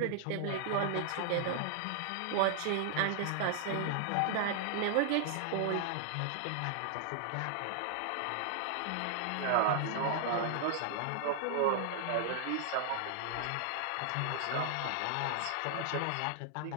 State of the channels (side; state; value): both; different; correlation 0.00